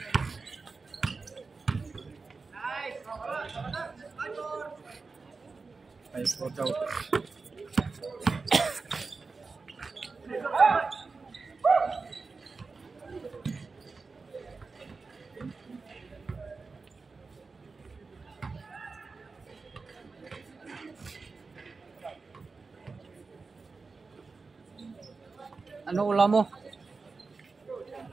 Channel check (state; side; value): quieter; left; 4.2 dB